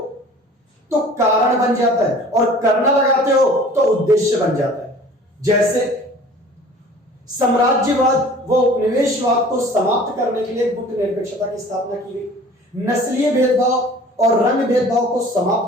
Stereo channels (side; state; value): both; normal; correlation 0.47